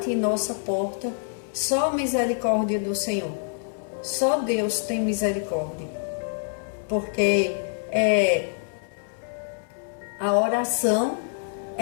em nossa porta, só a misericórdia do Senhor. Só Deus tem misericórdia. Porque a oração,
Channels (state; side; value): silent; right; digital silence